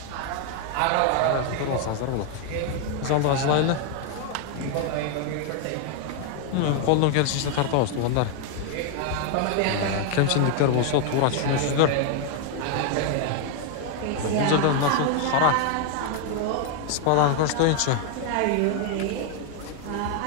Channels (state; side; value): different; both; correlation 0.00